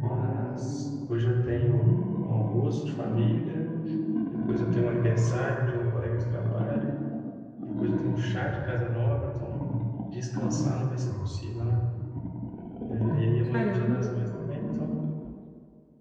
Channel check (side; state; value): both; identical; correlation 1.00